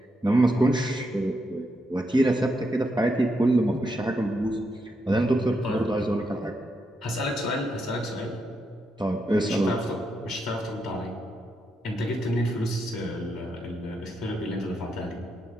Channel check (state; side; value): normal; both; correlation 0.82